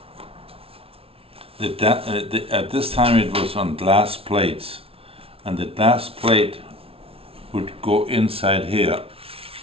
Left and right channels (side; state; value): left; late; 0.27 ms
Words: At this time it was on glass plates, and the glass plate would go inside here